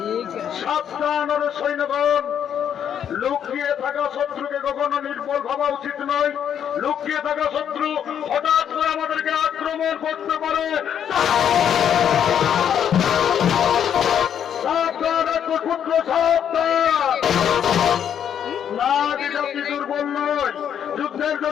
সাবধান সৈন্যগণ, লুকিয়ে থাকা শত্রুকে কখনো নির্বল ভাবা উচিত নয়। লুকিয়ে থাকা শত্রু হঠাৎ করে আমাদেরকে আক্রমণ করতে পারে। সাবধান, পুত্র সাবধান। নাগ জাতি দুর্বল নয়, যুদ্ধের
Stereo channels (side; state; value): right; quieter; 8.9 dB